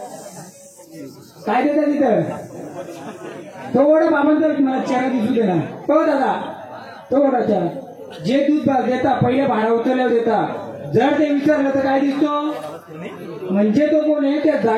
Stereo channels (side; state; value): both; identical; correlation 1.00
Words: काय देता तिथं तो वडा बाबांचा मला चेहरा दिसू दे ना हो दादा तो वडा चेहरा जे दूध देता पहिले भाडा उचलल्यावर देता जर ते विचारलं तर काय दिसतो म्हणजे तो कोण आहे त्या